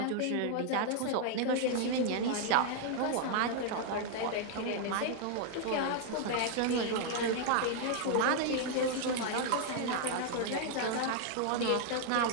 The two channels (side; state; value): both; different; correlation 0.00